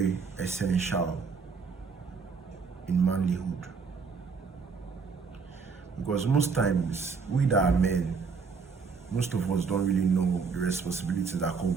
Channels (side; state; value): left; quieter; 5.2 dB